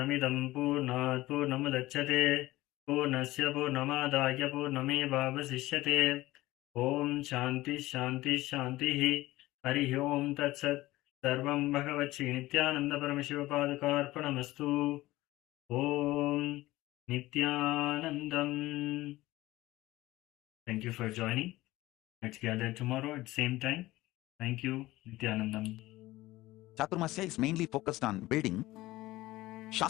Purnat Purnamudachyate Purnasya Purnamadaya Purnamevavasishyate. Om Shanti Shanti Shanti Hari Om Tat Sat. Sarvam Bhagavati Nithyananda Paramashivapadukarpanamastu. Om Nithyanandam. Thank you for joining. Let's gather tomorrow at the same time. Thank you, Nithyanandam. Chaturmasya is mainly focused on building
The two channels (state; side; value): quieter; right; 17.8 dB